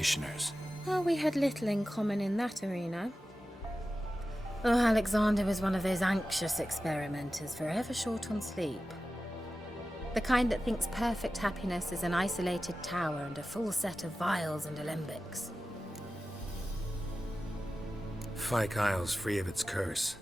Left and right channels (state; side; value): normal; both; correlation 0.94